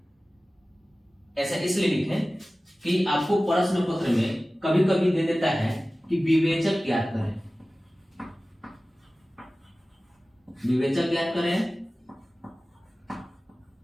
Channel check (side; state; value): both; normal; correlation 0.97